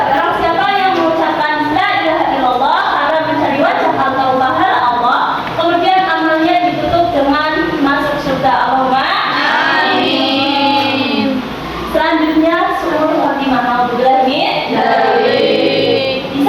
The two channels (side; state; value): both; identical; correlation 1.00